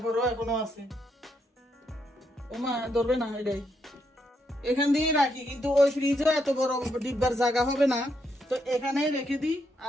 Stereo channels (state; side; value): normal; both; correlation 0.78